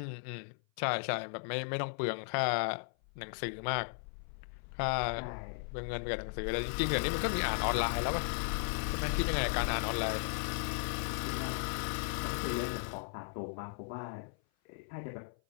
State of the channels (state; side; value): silent; right; 54 dB below the other